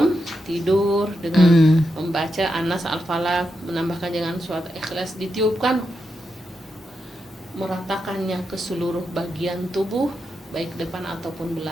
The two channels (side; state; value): both; normal; correlation 0.86